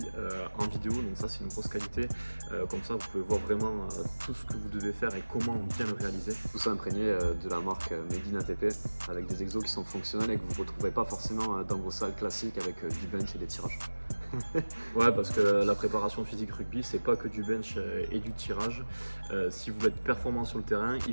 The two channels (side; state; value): both; inverted; correlation -1.00